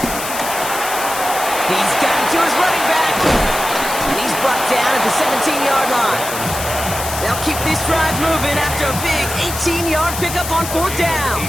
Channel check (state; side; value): noise; left; hiss, 7 dB below the sound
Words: He's got it to his running back. And he's brought down at the 17-yard line. They'll keep this drive moving after a big 18-yard pickup on 4th down.